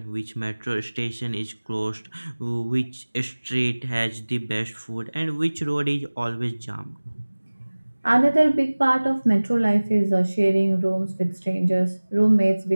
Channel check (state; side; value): inverted; both; correlation -1.00